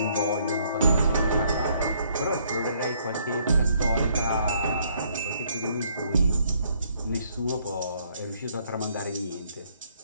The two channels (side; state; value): both; inverted; correlation -0.67